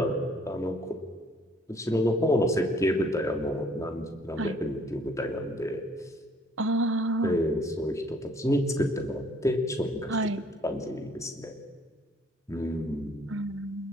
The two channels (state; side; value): normal; both; correlation 0.60